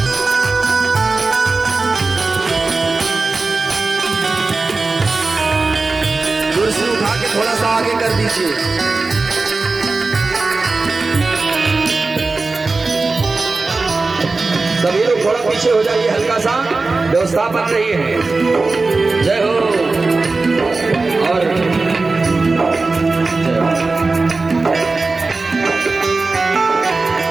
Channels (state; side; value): quieter; left; 3.7 dB